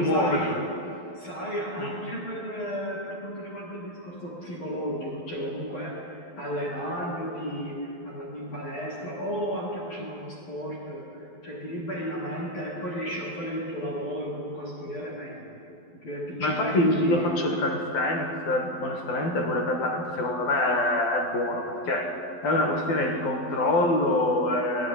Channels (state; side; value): late; right; 12 ms